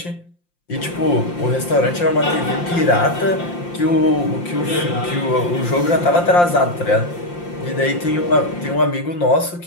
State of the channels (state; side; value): late; right; 5.7 ms